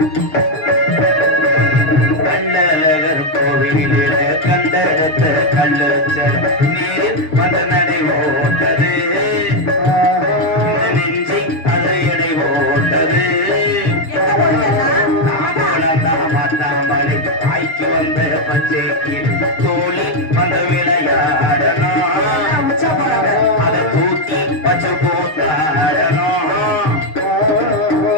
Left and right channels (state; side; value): late; right; 6.4 ms